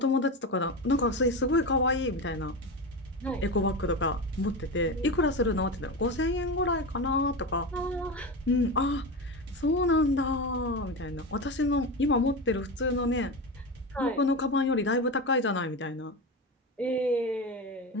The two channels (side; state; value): both; normal; correlation 0.21